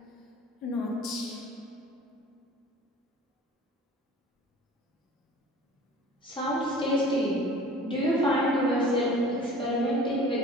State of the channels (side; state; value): both; normal; correlation 0.45